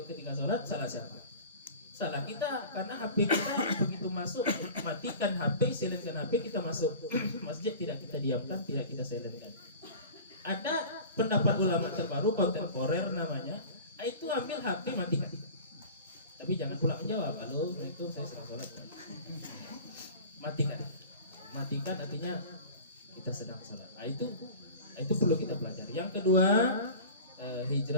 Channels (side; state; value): both; inverted; correlation -0.38